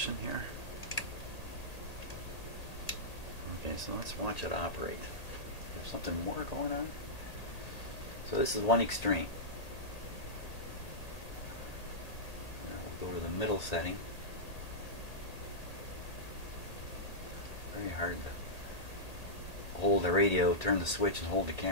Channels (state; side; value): late; right; 1.8 ms